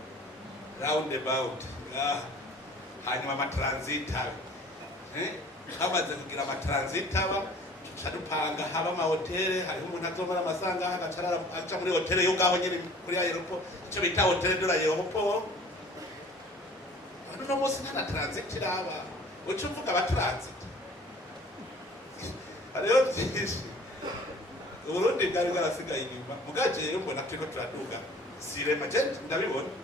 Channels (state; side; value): normal; both; correlation 0.49